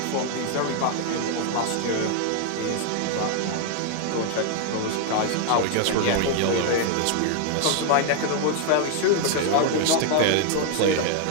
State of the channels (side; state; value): both; different; correlation 0.00